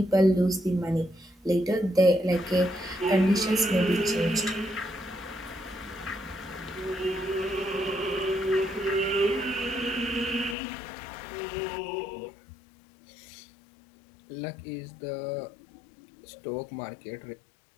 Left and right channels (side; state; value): right; drops out; at 10.6 s